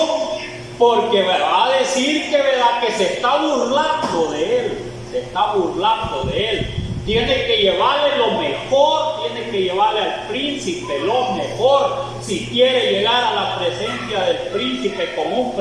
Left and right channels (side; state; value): both; identical; correlation 1.00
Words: Porque va a decir que, ¿verdad?, que se está burlando de él. Se está burlando de él. Tiene que llevarle lo mejor, tiene que llevarle al príncipe lo mejor. Si quiere llegar a la presencia del príncipe con un